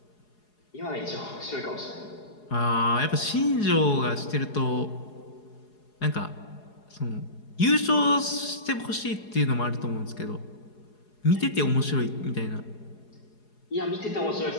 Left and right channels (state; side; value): late; right; 4.8 ms